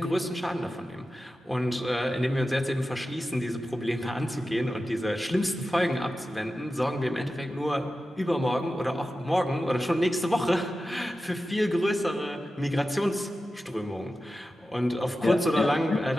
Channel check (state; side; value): normal; both; correlation 0.93